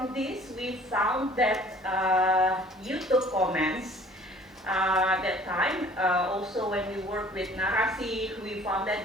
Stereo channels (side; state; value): both; normal; correlation 0.52